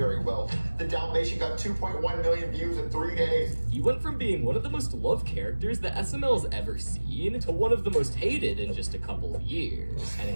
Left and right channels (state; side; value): inverted; both; correlation -1.00